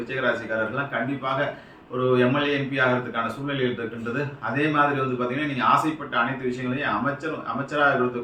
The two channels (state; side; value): identical; both; correlation 1.00